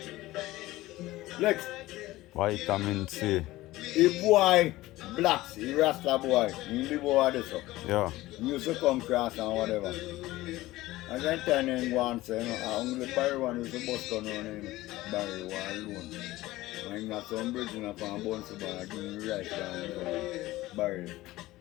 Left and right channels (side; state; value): right; quieter; 17.6 dB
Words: Next. Vitamin C. The boy blacks, the Rasta boy, he live over there so. Yeah. He used to come cross and whatever. And then turn him go and say, I only Barry one used to bust gun on him. Barry one alone. And he got some bridge in a fan bounce bar, give him right down Barry.